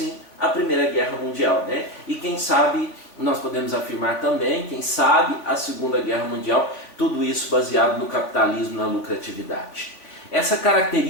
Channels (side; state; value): right; late; 3.6 ms